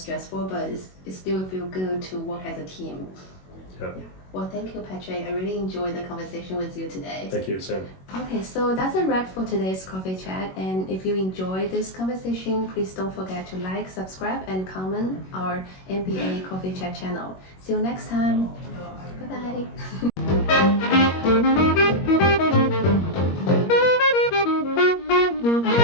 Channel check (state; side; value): late; right; 21 ms